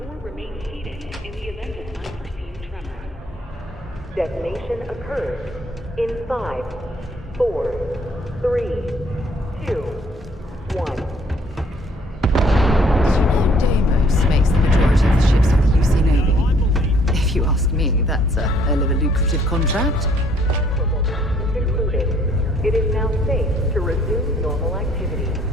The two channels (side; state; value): both; normal; correlation 0.62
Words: or remain seated in the event of unforeseen tremor. Detonation occurs in 5, 4, 3, 2, 1. Deimos makes the majority of the ships of the UC Navy. If you ask me, that's a hell of a lucrative contract. It is now safe to resume normal activity.